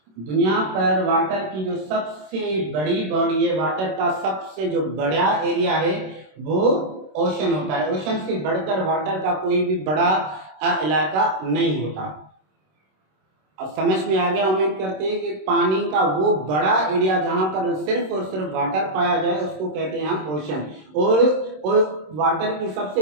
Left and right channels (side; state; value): left; late; 26 ms